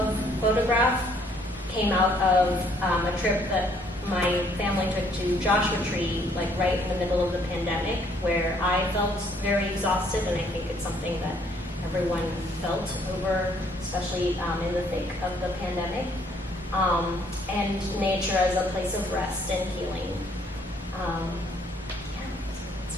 photograph came out of a trip that my family took to Joshua Tree, like right in the middle of the pandemic, where I felt very exhausted, and I think it's something that everyone felt over, especially in the thick of the pandemic. And nature as a place of rest and healing.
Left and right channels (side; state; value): both; normal; correlation 0.65